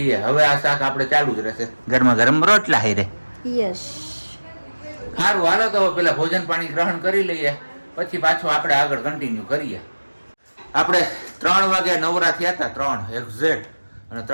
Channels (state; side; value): inverted; both; correlation -1.00